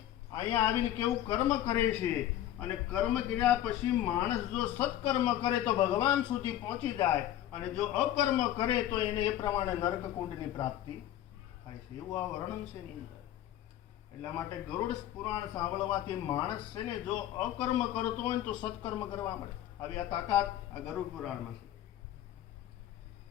અહીંયા આવીને કેવું કર્મ કરે છે, અને કર્મ કર્યા પછી માણસ જો સત્કર્મ કરે તો ભગવાન સુધી પહોંચી જાય, અને જો અકર્મ કરે તો એને એ પ્રમાણે નરકકુંડની પ્રાપ્તિ થાય છે. એવું આ વર્ણન છે એની અંદર. એટલા માટે ગરુડ પુરાણ સાંભળવાથી માણસ છે ને જો અકર્મ કરતો હોય તો સત્કર્મ કરવા મળે. આવી આ તાકાત આ ગરુડ પુરાણમાં છે.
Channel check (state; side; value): quieter; right; 12.5 dB